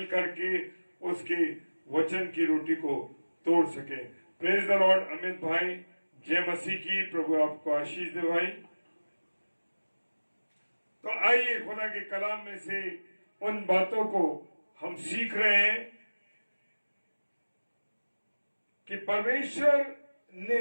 के उसके वचन की रोटी को तोड़ सके। Praise the Lord. अमित भाई जय मसीह की। प्रभु आपको आशीष दे भाई। तो आइए खुदा के कलाम में से उन बातों को हम सीख रहे हैं कि परमेश्वर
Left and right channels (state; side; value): inverted; both; correlation -1.00